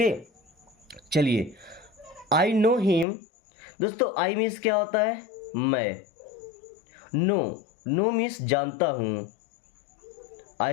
चलिए, आई नो हिम। दोस्तों आई मीन्स क्या होता है, मैं। नो, नो मीन्स जानता हूँ।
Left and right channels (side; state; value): right; drops out; at 3.1 s